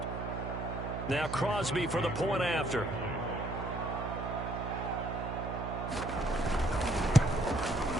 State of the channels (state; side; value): noise; right; hum, 5 dB below the sound